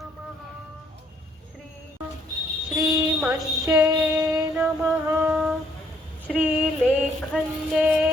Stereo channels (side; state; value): both; normal; correlation 0.67